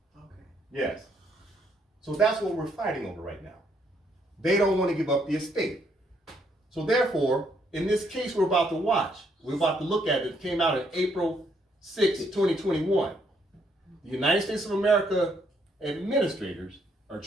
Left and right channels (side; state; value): both; normal; correlation 0.72